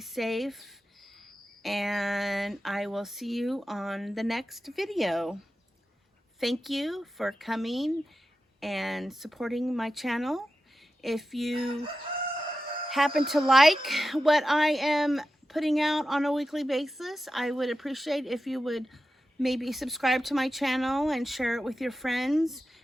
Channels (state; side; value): normal; both; correlation 0.91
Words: And I will see you on the next video. Thank you for coming and supporting my channel. If you happen to like what I am putting out on a weekly basis, I would appreciate if you would maybe subscribe to my channel and share it with your friends